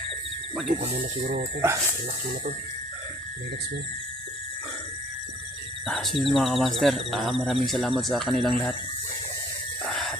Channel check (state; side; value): normal; both; correlation 0.57